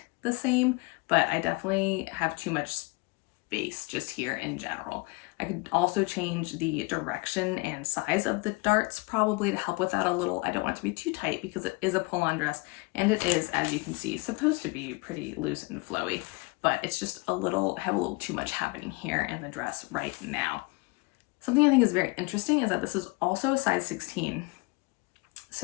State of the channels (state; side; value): quieter; right; 26.1 dB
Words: the same, but I definitely have too much space just here in general. I could also change the direction and size of the darts probably to help with that a little. I don't want it to be too tight because it is a pull-on dress, and it is, as you can see, supposed to be pretty loose and flowy, but it's just have a little too much happening here in the dress right now. Something I think is very interesting is that this is also a size 16.